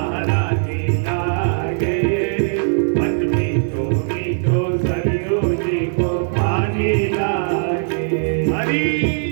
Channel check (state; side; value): silent; left; digital silence